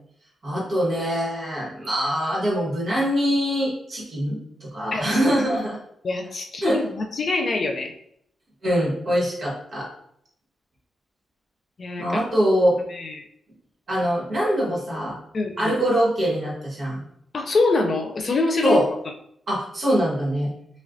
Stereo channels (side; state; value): both; normal; correlation 0.85